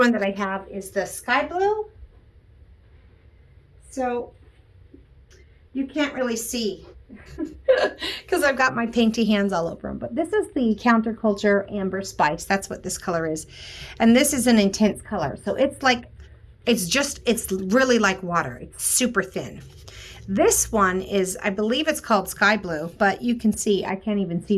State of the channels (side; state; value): both; identical; correlation 1.00